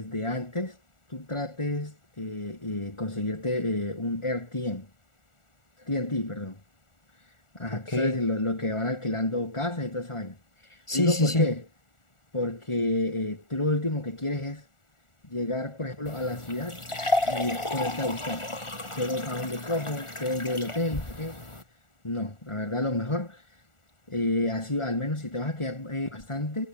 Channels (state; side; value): late; right; 1.4 ms